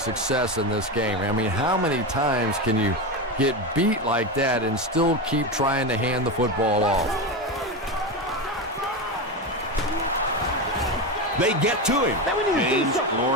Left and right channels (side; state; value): both; normal; correlation 0.17